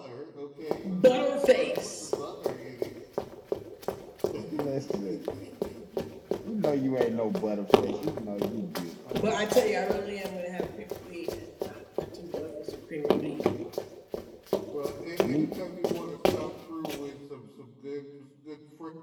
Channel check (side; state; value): both; identical; correlation 1.00